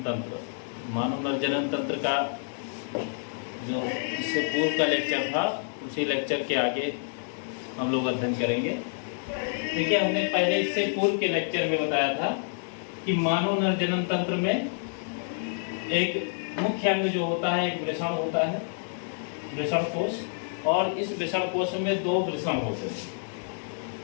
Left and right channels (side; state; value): right; silent; digital silence